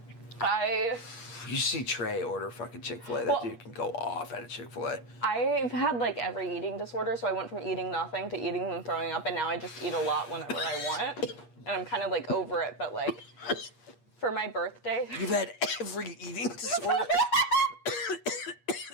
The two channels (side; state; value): right; late; 8.4 ms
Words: You see Trey order fucking Chick-fil-A. That dude can go off at a Chick-fil-A. I've had like every eating disorder, so I went from eating nothing to eating and throwing up, and now I just eat a lot whenever I want. And I'm kind of like over it, but like for my birthday. You've had every eating disorder?